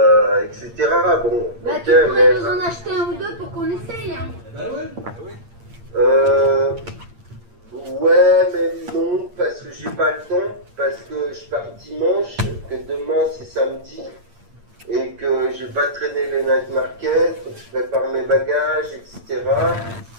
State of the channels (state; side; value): late; left; 8.7 ms